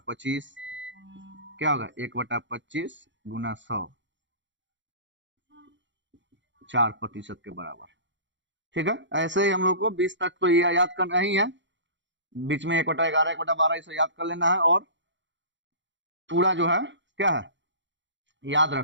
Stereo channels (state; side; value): late; left; 0.54 ms